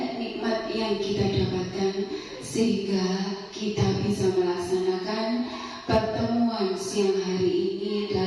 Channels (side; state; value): both; identical; correlation 1.00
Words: nikmat yang kita dapatkan, sehingga kita bisa melaksanakan pertemuan siang hari ini